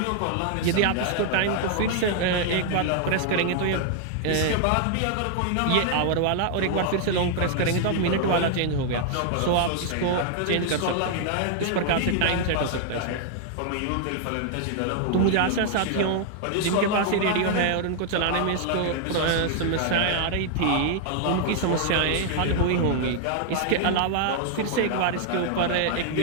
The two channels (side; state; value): both; different; correlation 0.00